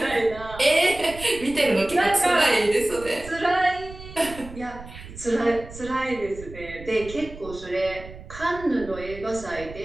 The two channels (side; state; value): right; noise; rumble, 15 dB below the sound